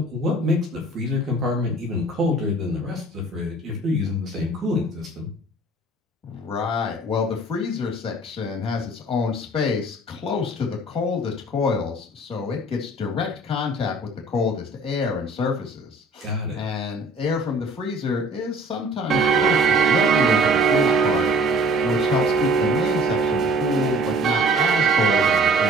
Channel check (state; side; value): normal; both; correlation 0.51